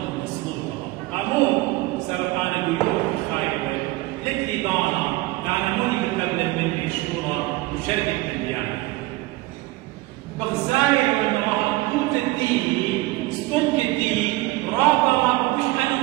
من سلوطة أمو سبب أنا بيوم بخايبة لكلي بانا لأنا موني بتقبل مني شورى وشركة البيان بخزاير من راح توت الدين سكنك الدين رابطة مش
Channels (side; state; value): left; quieter; 19.6 dB